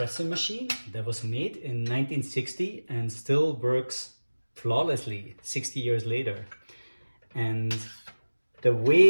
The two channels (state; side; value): inverted; both; correlation -1.00